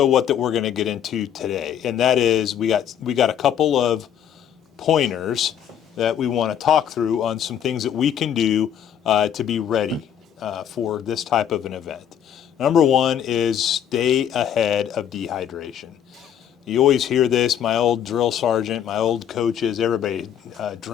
what that we're going to get into today, and that is we got a couple of pointers that we want to talk through on some things that we can do to be ready for this type of an event. Number 1 is stay ahead of dehydration. You always hear this, my old drill sergeant, my old coaches, everybody,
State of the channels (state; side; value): quieter; right; 9.4 dB